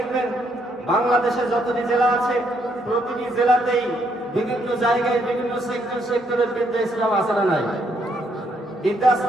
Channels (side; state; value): both; normal; correlation 0.73